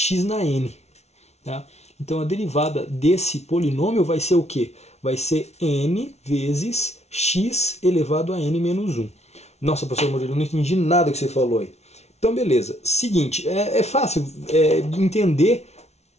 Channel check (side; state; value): right; late; 0.31 ms